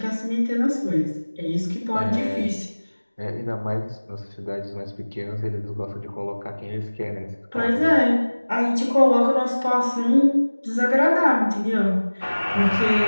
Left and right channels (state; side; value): inverted; both; correlation -1.00